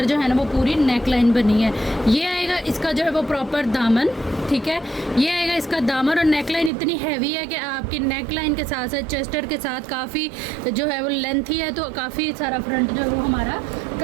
जो है ना वो पूरी नेक लाइन बनी है। ये आएगा इसका जो है वो प्रॉपर दामन, ठीक है। ये आएगा इसका दामन, और नेक लाइन इतनी हैवी है कि आपकी नेक लाइन के साथ साथ चेस्टर के साथ काफ़ी जो है वो लेंथी है, तो काफ़ी सारा फ्रंट जो है वो हमारा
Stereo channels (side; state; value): left; drops out; at 6.7 s